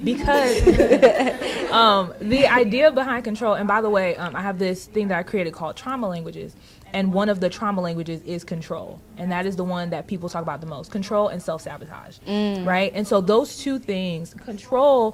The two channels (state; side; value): identical; both; correlation 1.00